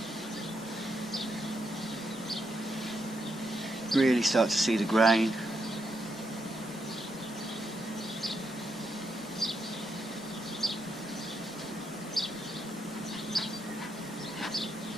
Really start to see the grain.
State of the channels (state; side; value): normal; both; correlation 0.81